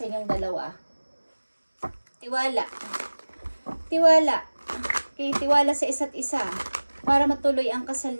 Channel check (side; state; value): both; inverted; correlation -1.00